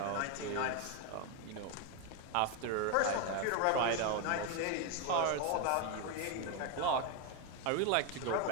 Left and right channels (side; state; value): both; different; correlation 0.02